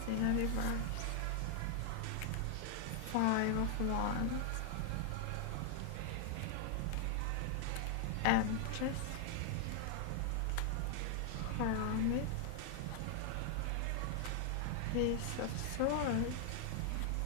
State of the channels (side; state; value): both; different; correlation 0.00